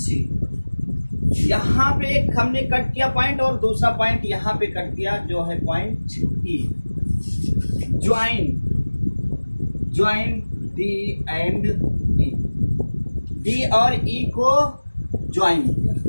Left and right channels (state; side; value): inverted; both; correlation -1.00